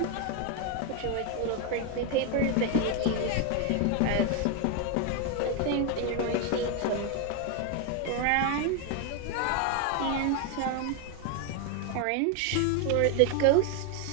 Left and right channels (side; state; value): both; different; correlation 0.01